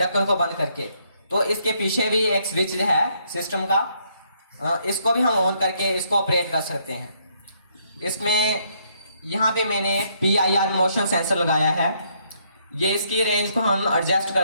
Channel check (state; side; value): inverted; both; correlation -0.71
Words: को बंद करके, तो इसके पीछे भी एक स्विच है सिस्टम का, इसको भी हम ऑन करके इसको ऑपरेट कर सकते हैं। इसमें यहाँ पे मैंने PIR मोशन सेंसर लगाया है। ये इसकी रेंज को हम एडजस्ट